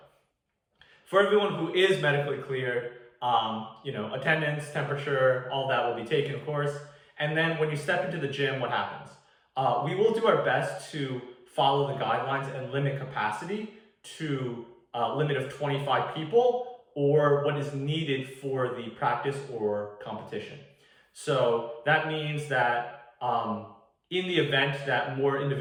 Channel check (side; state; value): both; identical; correlation 1.00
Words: For everyone who is medically cleared, attendance, temperature, all that will be taken, of course. And then when you step into the gym, what happens? We will do our best to follow the guidelines and limit capacity to a limit of 25 people or what is needed for the practice or competition. So that means that in the event that more